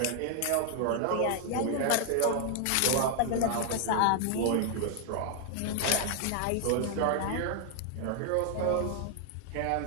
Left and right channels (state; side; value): different; both; correlation 0.00